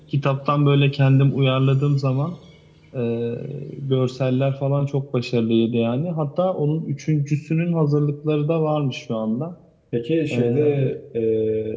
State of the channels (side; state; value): both; identical; correlation 1.00